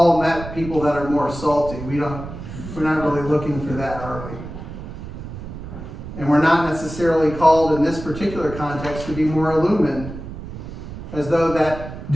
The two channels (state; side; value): noise; right; rumble, 10 dB below the sound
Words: met people that are more salty. We're not really looking for that, are we? And we're not necessarily called in this particular context to be more illumined, as though that